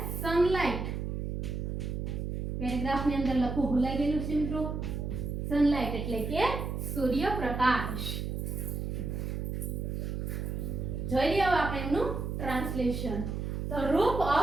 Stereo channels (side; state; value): right; noise; hum, 3 dB below the sound